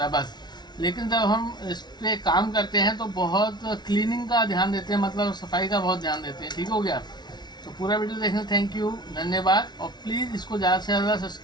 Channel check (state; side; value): late; right; 0.20 ms